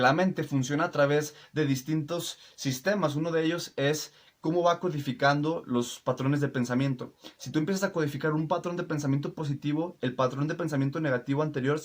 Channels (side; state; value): both; identical; correlation 1.00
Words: la mente funciona a través de distintos sistemas. Uno de ellos es cómo va codificando los patrones de pensamiento. Si tú empiezas a codificar un patrón de pensamiento positivo, el patrón de pensamiento negativo anterior